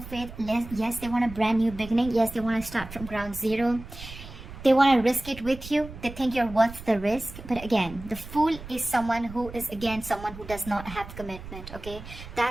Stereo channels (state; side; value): noise; right; rumble, 14 dB below the sound